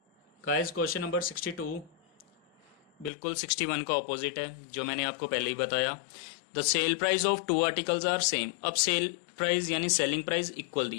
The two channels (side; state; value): right; drops out; at 3.1 s